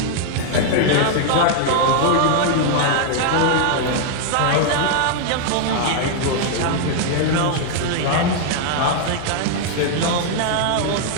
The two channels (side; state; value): both; different; correlation 0.00